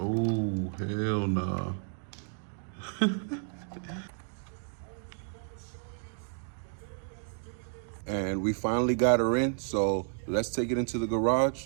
hell nah. And we finally got her in, so let's take it into the garage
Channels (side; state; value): left; silent; digital silence